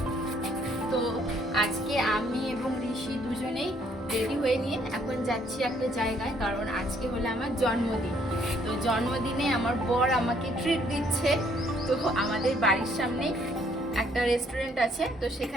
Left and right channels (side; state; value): both; normal; correlation 0.66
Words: তো আজকে আমি এবং ঋষি দুজনেই রেডি হয়ে নিয়ে এখন যাচ্ছি একটা জায়গায়, কারণ আজকে হলো আমার জন্মদিন। তো জন্মদিনে আমার বর আমাকে ট্রিট দিচ্ছে। তো আমাদের বাড়ির সামনে একটা রেস্টুরেন্ট আছে, তো